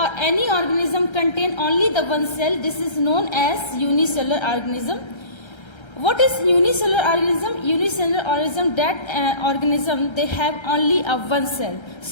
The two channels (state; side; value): late; right; 1.3 ms